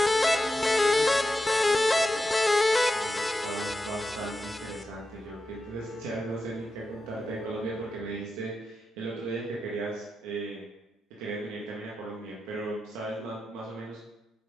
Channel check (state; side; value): normal; both; correlation 0.89